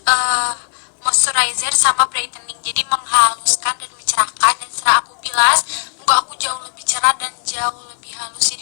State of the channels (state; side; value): silent; right; digital silence